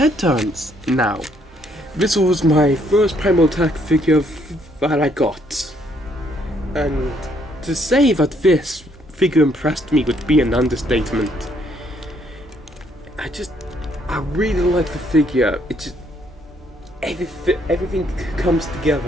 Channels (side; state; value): both; normal; correlation 0.69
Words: turns. Now, this was my first Primal Attack figure that I got. And to say that this figure impressed me would be an understatement. I really like the figure. It just everything comes